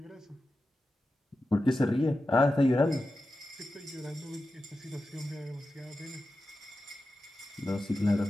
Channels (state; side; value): normal; both; correlation 0.92